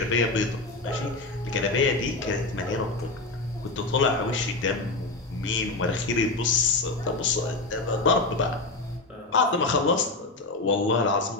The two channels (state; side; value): quieter; right; 3.3 dB